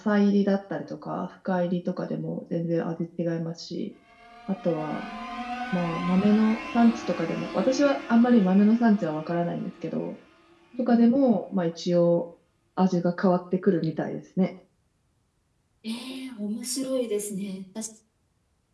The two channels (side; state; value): both; identical; correlation 1.00